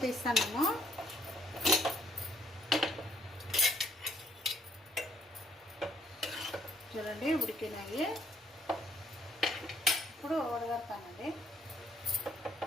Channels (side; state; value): both; normal; correlation 0.66